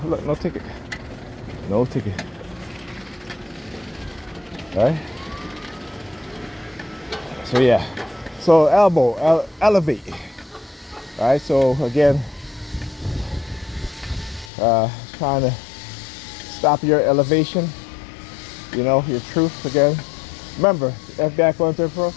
Look, no ticket. No ticket. Right? So yeah. So elbow, elevate. Right? So again, trying to stop your elevation. You know, your truth again. Remember, FBI Quantum Pro,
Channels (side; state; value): right; drops out; at 14.5 s